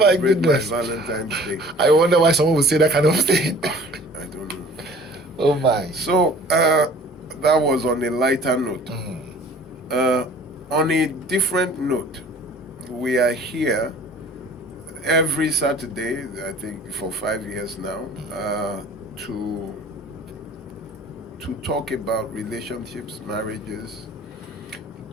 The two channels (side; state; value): both; normal; correlation 0.49